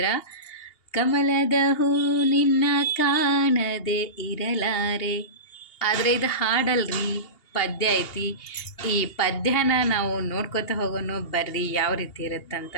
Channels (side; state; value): right; late; 2.8 ms